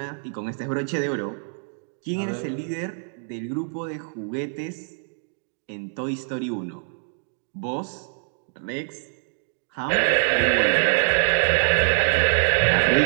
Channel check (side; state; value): left; silent; digital silence